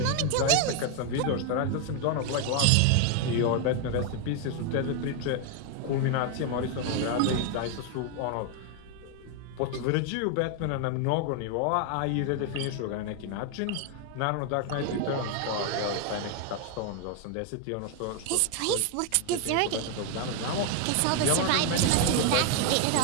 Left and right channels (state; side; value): different; both; correlation 0.01